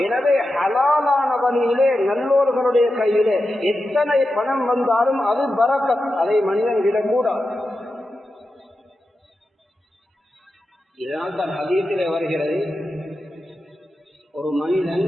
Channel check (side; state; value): both; normal; correlation 0.90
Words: எனவே ஹலாலான வழியிலே நல்லோர்களுடைய கையிலே எத்தனை பணம் வந்தாலும் அது பரக்கத், அதை மனிதன் விடக்கூடாது. இதனால் தான் ஹதீஸிலே வருகிறது, ஒரு மனிதன்